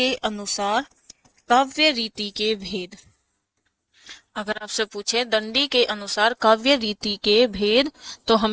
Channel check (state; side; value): identical; both; correlation 1.00